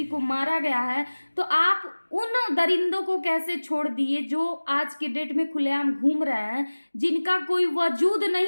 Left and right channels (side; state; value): both; inverted; correlation -1.00